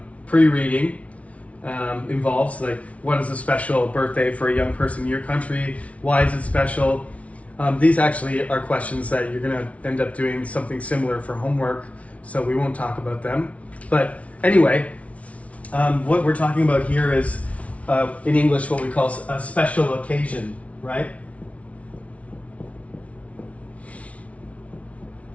pre-reading involved, like what is a special birthday for a young person in your country? Why is it special? These actually are questions that you're going to end up doing something similar for homework, so we won't talk about them. But anyway, what we're talking about here is, in English, what we call a special occasion, right?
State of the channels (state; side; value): late; right; 0.065 ms